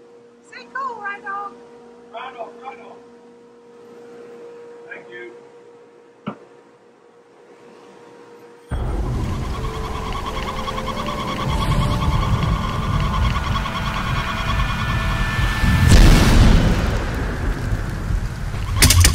Stay cool, right, dog? Right on, right on. Thank you.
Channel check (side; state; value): both; identical; correlation 1.00